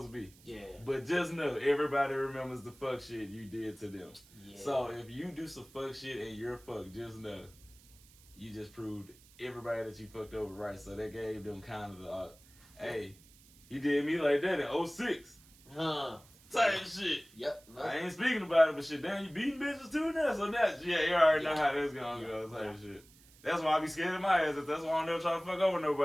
to be. Yeah. But just know everybody remembers the fuck shit you did to them. Yeah. So if you do some fuck shit and you're fucked, just know you just proved everybody that you fucked over right. So that gave them kind of the hey. You did me like that in 06. Type shit. Yep. No. I ain't speaking about it, but shit, damn, you beating bitches too now. So that's, you already know how that's gonna go. Type shit. That's why I be scared of my ass. That's why I don't never try to fuck over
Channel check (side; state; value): right; noise; hiss, 25 dB below the sound